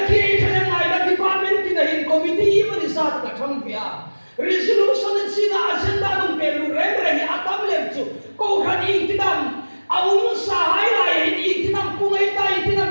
cho nên này là department thì là in committee mà đi sát cả trong việc. Resolution sina agenda ng pelu remre atam lemchu ko khan intinam aung sa highlight intinam pungai ta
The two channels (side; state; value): both; inverted; correlation -1.00